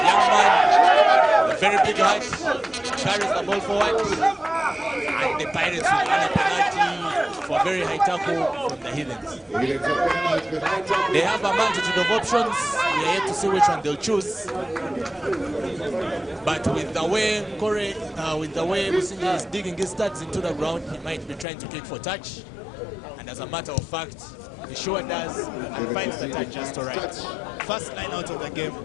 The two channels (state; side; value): drops out; right; at 21.5 s